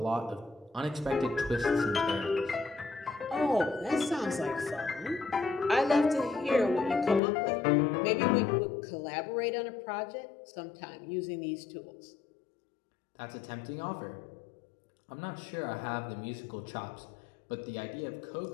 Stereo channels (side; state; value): right; drops out; at 7.2 s